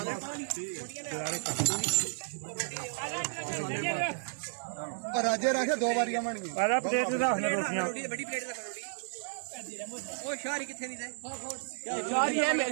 راجے رکھے 2 باریاں بن گئی. پلیٹ روٹیاں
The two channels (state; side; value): silent; left; digital silence